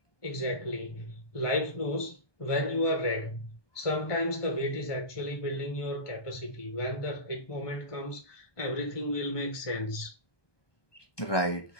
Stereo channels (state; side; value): late; right; 1.2 ms